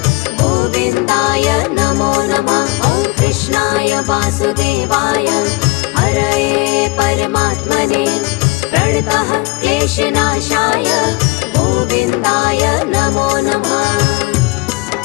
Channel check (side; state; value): right; quieter; 23.8 dB